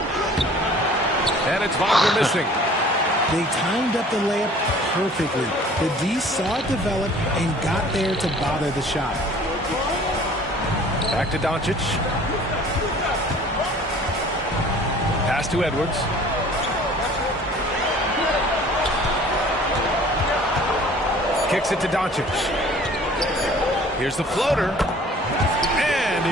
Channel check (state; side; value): normal; both; correlation 0.50